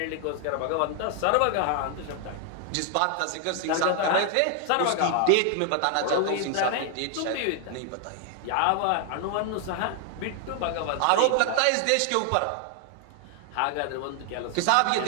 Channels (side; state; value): both; different; correlation 0.00